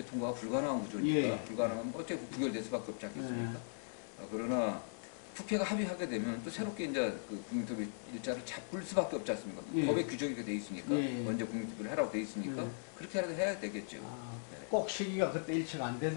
통과가 불가능한 구조니까 불가능하면 어차피 부결될 수밖에 없지 않겠습니까? 그러나 국회가 합의하게 되면 또 새롭게 이제 그 국민투표 일자를 잡을 수밖에 없지 않습니까? 법의 규정이 돼 있으니까 먼저 국민투표를 해라고 돼 있으니까 그렇게라도 해야 되겠죠. 꼭 시기가 그때 일치가 안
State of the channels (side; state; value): right; silent; digital silence